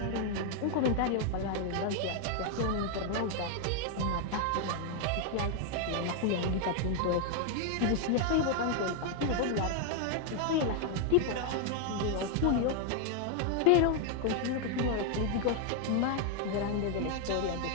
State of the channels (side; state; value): both; different; correlation 0.00